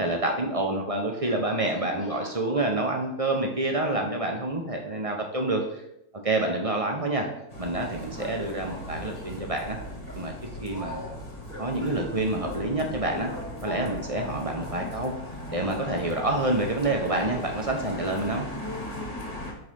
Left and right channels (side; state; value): left; late; 1.6 ms